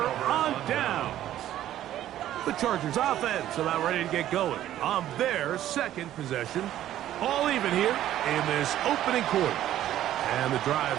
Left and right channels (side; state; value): left; quieter; 12.5 dB